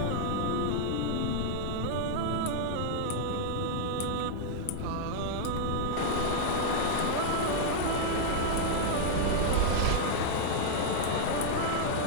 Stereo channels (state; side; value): different; both; correlation -0.01